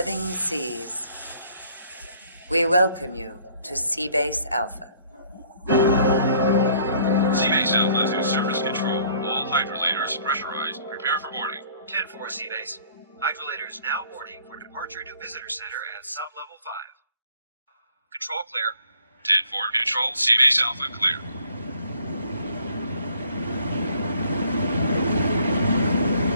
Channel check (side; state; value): both; inverted; correlation -0.58